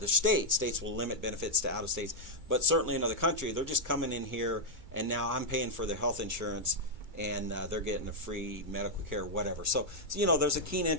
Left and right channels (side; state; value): left; late; 2.3 ms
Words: states. States will limit benefits to out of states, but certainly in another country, they're just coming in here, and now I'm paying for their health insurance, and they're getting a free medical care, whatever. So there's a keen